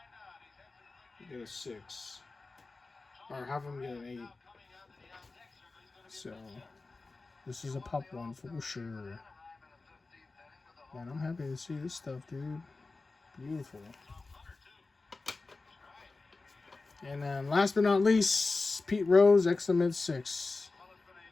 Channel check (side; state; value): right; quieter; 3.6 dB